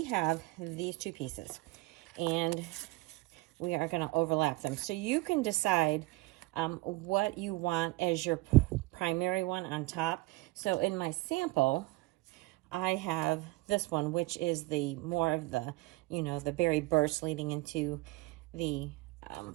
have these two pieces and we are going to overlap them. So you can decide what you want as your primary one on top. So in my sample, I have this one, which is the more of the, you know, the berry burst leading into the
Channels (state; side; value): quieter; left; 21.7 dB